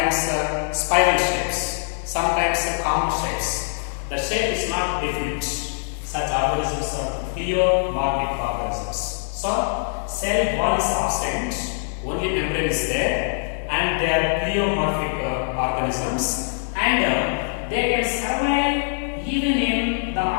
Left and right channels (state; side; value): silent; right; 63 dB below the other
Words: spiral shapes, sometimes common shapes. The shape is not definite. Such organisms are pleomorphic organisms. So, cell wall is absent, only membrane is there, and they are pleomorphic organisms, and they can survive even in the